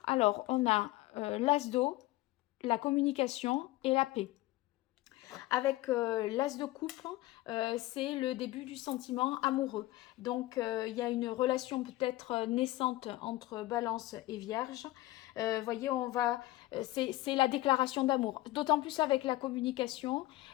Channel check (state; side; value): quieter; right; 18.1 dB